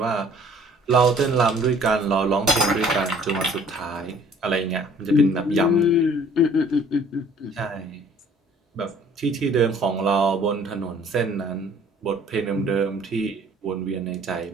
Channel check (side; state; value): both; normal; correlation 0.55